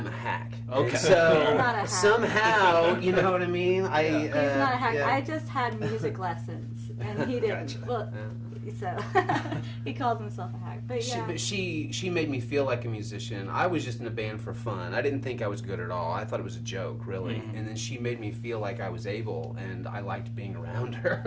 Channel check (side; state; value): both; identical; correlation 1.00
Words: a hack. Okay. And so He's not a hack. somehow, you know what I mean? He's not a hack. yeah. I just had music lessons, and he didn't. Gotcha. Well, so he calls himself a hack. But yeah. She made me feel like a musician. I was just in a band for fun. I didn't think I was good at all. I thought it was a joke, really. And then she made me feel like I was able, and I liked being around